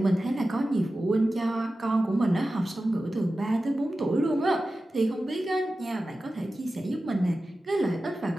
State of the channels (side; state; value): both; normal; correlation 0.94